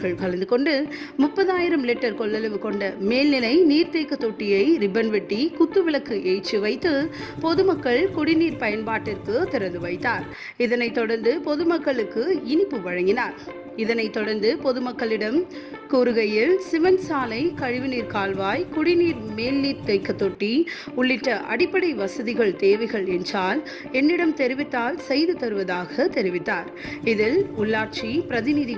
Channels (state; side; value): identical; both; correlation 1.00